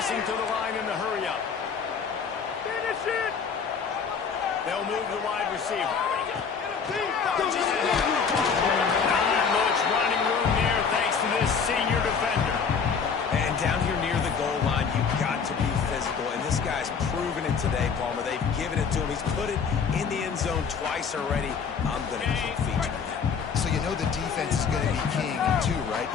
to the line in the hurry-up. Finish it! They'll move the wide receiver. Not much running room there thanks to this senior defender. And down here near the goal line, you've got to be physical. And this guy's proven it today, Palmer. They've given it to him. He's put it in the end zone twice already. I'm going to keep featuring him. So you know the defense is going to be keying him too, right?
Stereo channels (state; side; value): quieter; right; 6.1 dB